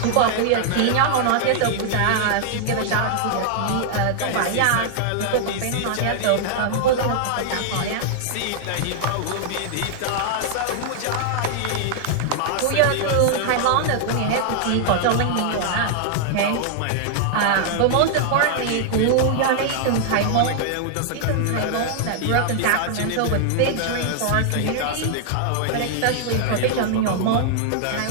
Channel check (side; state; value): both; different; correlation -0.01